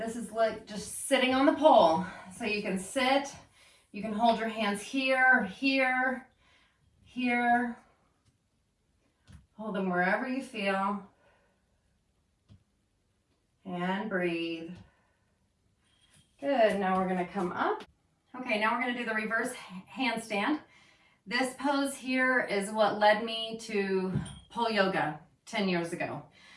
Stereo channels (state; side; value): identical; both; correlation 1.00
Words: is like just sitting on the pole. So you can sit, you can hold your hands here, here, here. Hold them wherever you feel. And breathe. Good, now we're going to come up. Okay, now we're going to do the reverse handstand. This pose here is what led me to pole yoga 10 years ago,